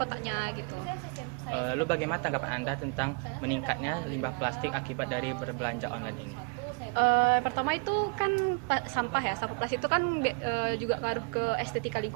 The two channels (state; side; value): quieter; left; 34.6 dB